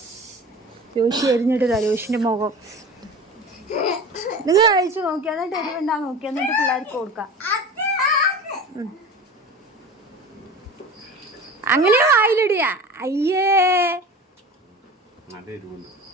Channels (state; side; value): normal; both; correlation 0.35